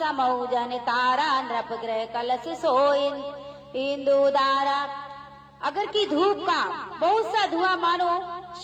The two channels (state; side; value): identical; both; correlation 1.00